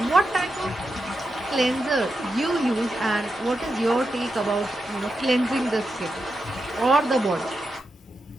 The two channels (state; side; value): normal; both; correlation 0.88